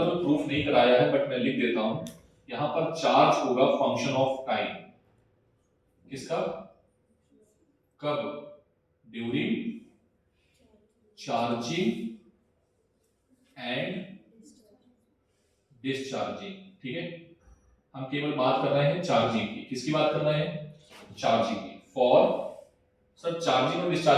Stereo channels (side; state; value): both; identical; correlation 1.00